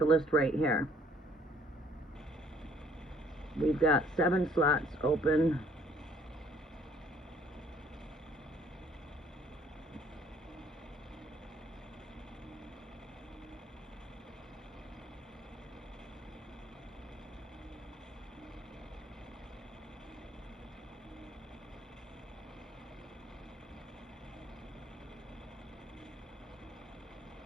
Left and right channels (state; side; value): normal; both; correlation 0.60